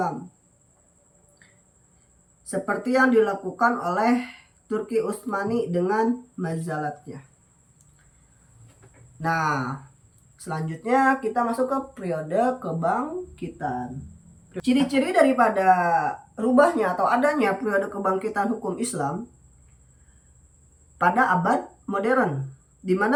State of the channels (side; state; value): both; identical; correlation 1.00